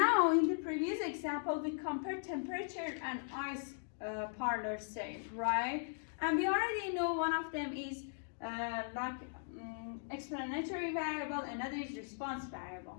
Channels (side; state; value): right; silent; digital silence